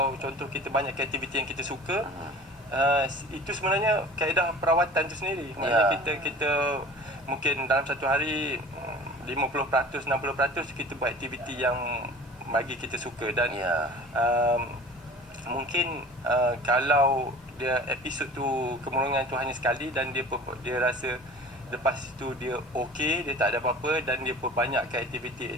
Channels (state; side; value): normal; both; correlation 0.42